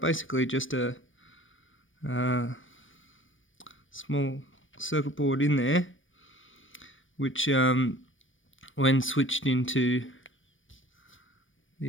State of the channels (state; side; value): late; right; 0.57 ms